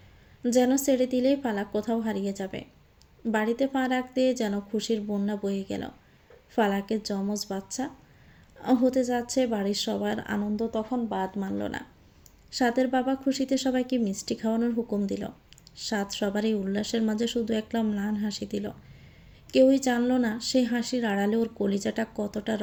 যেন ছেড়ে দিলেই পালাক কোথাও হারিয়ে যাবে। বাড়িতে পা রাখতে যেন খুশির বন্যা বয়ে গেল। ফালাকের যমজ বাচ্চা হতে যাচ্ছে, বাড়ির সবার আনন্দ তখন বাদ মানল না। সাদের বাবা খুশিতে সবাইকে মিষ্টি খাওয়ানোর হুকুম দিল। সাদ সবার এই উল্লাসের মাঝে শুধু একটা ম্লান হাসি দিল। কেউই জানল না সেই হাসির আড়ালে ওর কলিজাটা কতটা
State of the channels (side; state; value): both; identical; correlation 1.00